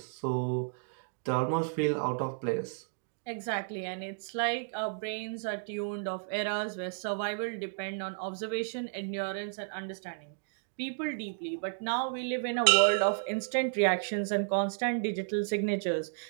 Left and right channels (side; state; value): left; silent; digital silence